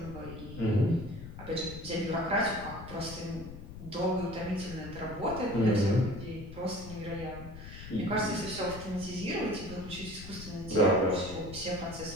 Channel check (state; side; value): noise; left; rumble, 12 dB below the sound